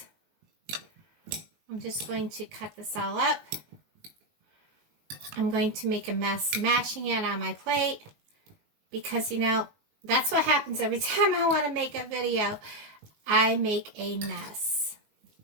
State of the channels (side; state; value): left; late; 19 ms